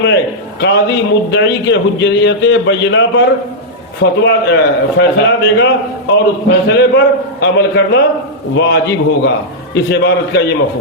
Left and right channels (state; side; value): normal; both; correlation -0.07